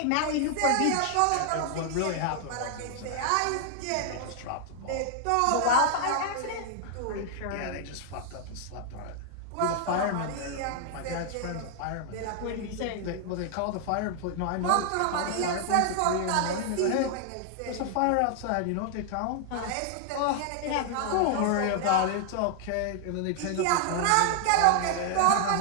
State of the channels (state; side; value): different; both; correlation 0.00